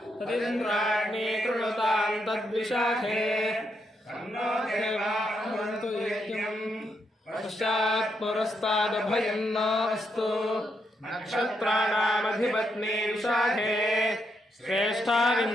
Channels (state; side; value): normal; both; correlation 0.80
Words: తదింద్రాగ్ని కృణుతాం తద్విశాఖే తన్నో దేవాః యజ్ఞం పశ్చాత్ పురస్తాదభయం నాస్తు. నక్షత్రాణామధిపత్ని విశాఖే